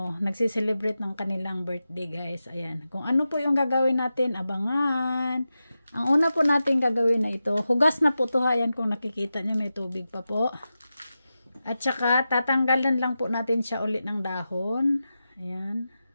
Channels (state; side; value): inverted; both; correlation -0.91